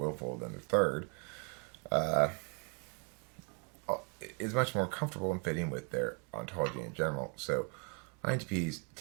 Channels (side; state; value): left; quieter; 35.0 dB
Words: than the third, is much more comfortable in fitting with their ontology in general. So INTPs